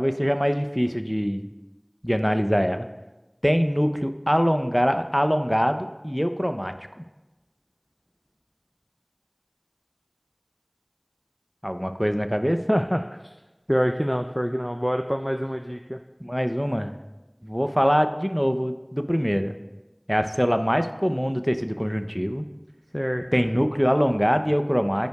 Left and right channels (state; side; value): identical; both; correlation 1.00